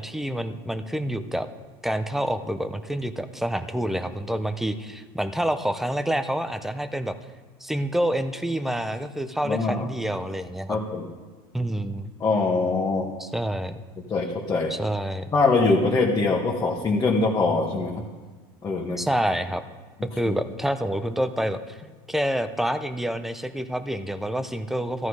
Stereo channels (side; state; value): both; normal; correlation 0.76